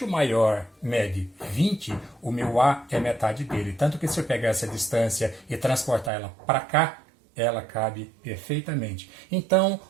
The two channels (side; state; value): left; drops out; at 6.1 s